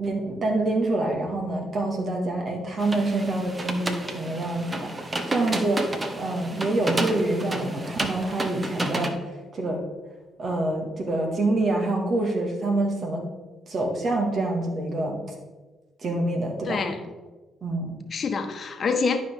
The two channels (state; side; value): normal; both; correlation 0.79